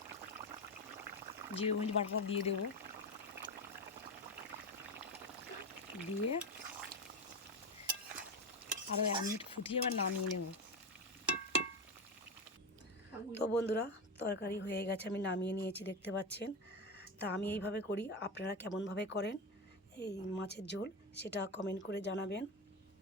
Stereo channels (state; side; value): normal; both; correlation 0.16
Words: জিরে মরিচ বাটাটা দিয়ে দেবো, দিয়ে আরও 1 মিনিট ফুটিয়ে এবার নামিয়ে নেব। তো বন্ধুরা, তরকারি হয়ে গেছে, আমি নামিয়ে নিয়েছি, দেখতে পাচ্ছেন। তা আমি এইভাবে করি, আপনারা কেমনভাবে করেন এই মাছের ঝোল সেটা কমেন্ট করে জানাবেন।